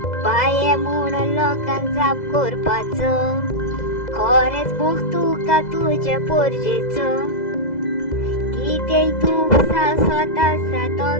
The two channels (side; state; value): right; late; 2.0 ms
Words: पाये म्हणून लोकांक जाप करपाचो. खरेंच मोग तुका तुज्या पोरजेचो. कितेंय तूं स्वता तो